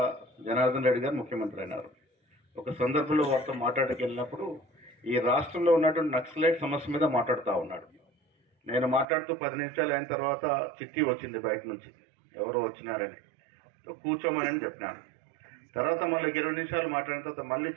జనార్దన్ రెడ్డి గారు ముఖ్యమంత్రి అయినారు. ఒక సందర్భంలో వారితో మాట్లాడకి వెళ్ళినప్పుడు ఈ రాష్ట్రంలో ఉన్నటువంటి నక్సలైట్ సమస్య మీద మాట్లాడుతూ ఉన్నాడు. నేను మాట్లాడుతూ 10 నిమిషాలు అయిన తర్వాత చిట్టి వచ్చింది బయట నుంచి, ఎవరు వచ్చినారని, కూర్చోమని చెప్పినాను. తర్వాత మళ్ళీ 20 నిమిషాలు మాట్లాడిన తర్వాత మళ్ళీ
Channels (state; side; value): drops out; left; at 9.1 s